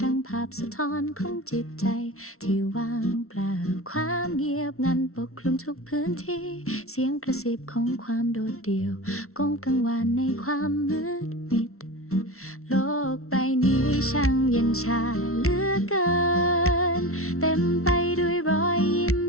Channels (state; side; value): late; right; 0.63 ms